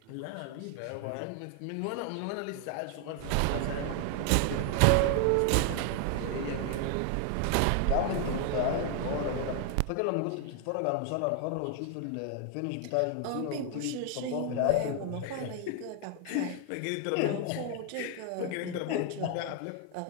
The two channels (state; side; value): different; both; correlation 0.00